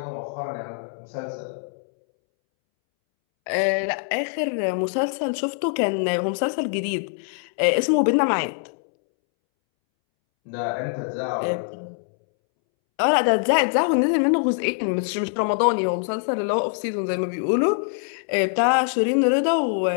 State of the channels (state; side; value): silent; right; 63 dB below the other